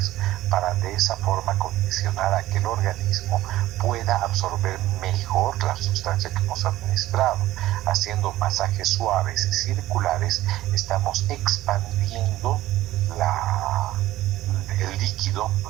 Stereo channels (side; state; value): left; quieter; 15.5 dB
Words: para de esa forma condicionar a que el organismo pueda absorber mejor la sustancia que hemos administrado. Haciendo masajes suaves y circulares estamos expandiendo el líquido,